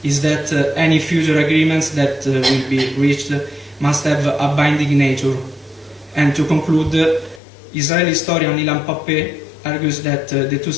is that any future agreements that will be reached must have a binding nature. And to conclude, Israeli historian Ilan Pappé argues that the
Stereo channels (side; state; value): right; drops out; at 7.4 s